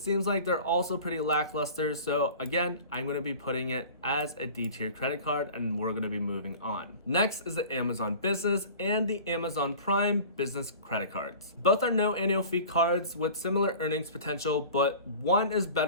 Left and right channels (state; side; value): inverted; both; correlation -0.40